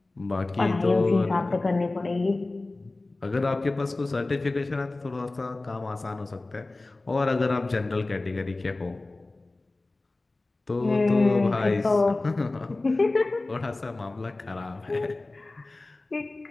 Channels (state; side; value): quieter; right; 3.1 dB